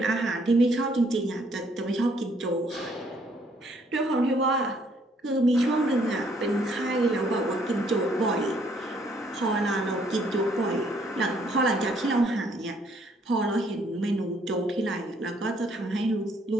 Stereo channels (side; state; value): both; normal; correlation 0.66